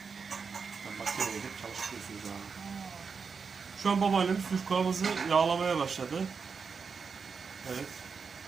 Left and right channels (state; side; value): quieter; left; 5.5 dB